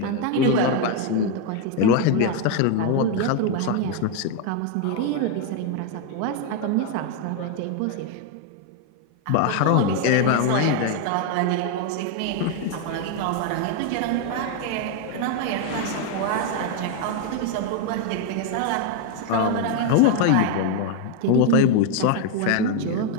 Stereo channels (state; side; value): different; both; correlation 0.01